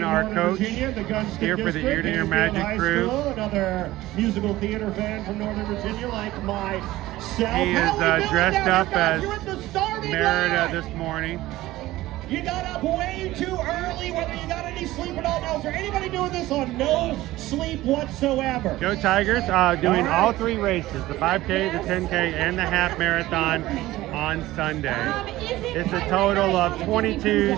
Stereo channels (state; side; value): quieter; left; 16.8 dB